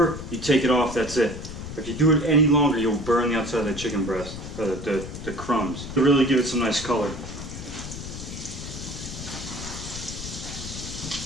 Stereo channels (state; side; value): noise; left; rumble, 9 dB below the sound